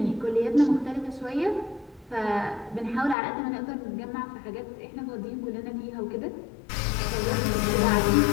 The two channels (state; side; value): drops out; right; at 3.2 s